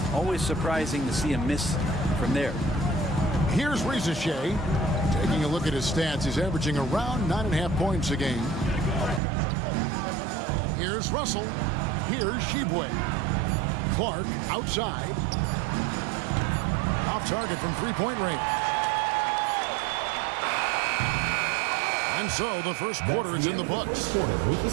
always surprising to see him miss from there. Here's Rizichet. Taking a look at his stats, he's averaging around 9.5 points a game. Here's Russell. Here's Sheboy. Clark outside. Off target from three-point range. And so the first quarter is in the books.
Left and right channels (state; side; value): drops out; left; at 9.2 s